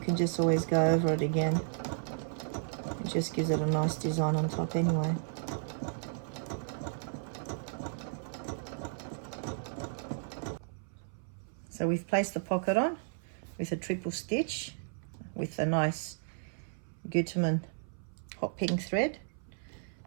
just always go over it again. It just gives it a nice design on top anyway. So we've placed the pocket on with a triple stitch with a nice Gutermann hot pink thread.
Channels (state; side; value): silent; left; 55 dB below the other